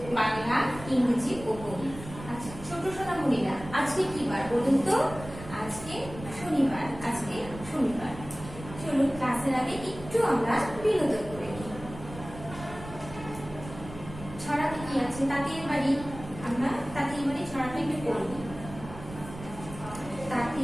বাংলা, ইংরেজি ও গণিত। আচ্ছা ছোট সোনামণিরা, আজকে কি বার বলুন তো? আজকে শনিবার। চলুন ক্লাসের আগে একটু আমরা বিনোদন করে নিই। ছড়াতে কি আছে? তাঁতির বাড়ি। আমরা তাঁতির বাড়ি ছড়াটা একটু পড়ে নিই।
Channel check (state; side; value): noise; right; rumble, 13 dB below the sound